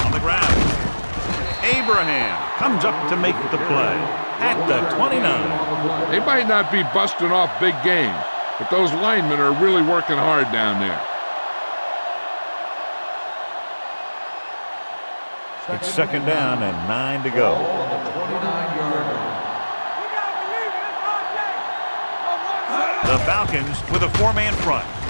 Abraham comes up to make the play at the 29. They might not be busting off big games, but those linemen are really working hard down there. It's second down and 9 to go. The Falcons with a 4-man front.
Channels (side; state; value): both; inverted; correlation -1.00